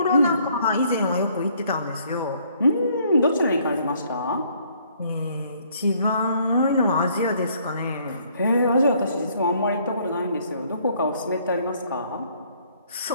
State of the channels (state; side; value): inverted; both; correlation -0.64